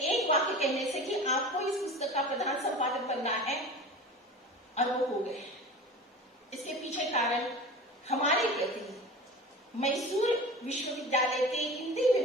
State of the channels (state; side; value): normal; both; correlation 0.35